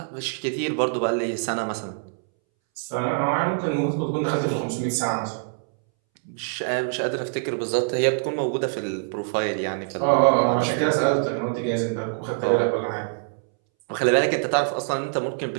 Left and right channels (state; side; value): silent; left; 62 dB below the other